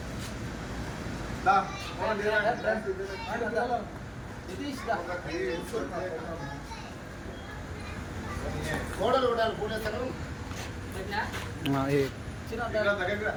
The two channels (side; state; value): both; identical; correlation 1.00